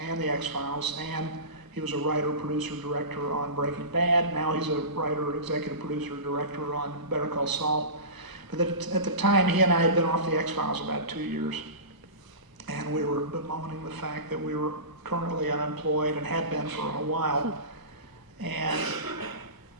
he was a writer, producer, director on Breaking Bad. Now he's a writer, executive producer, director on Better Call Saul. But at the time, he and I had been off the X-Files about 2 years, and we were bemoaning the fact that we were currently unemployed and had been for a while. And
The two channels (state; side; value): late; left; 1.0 ms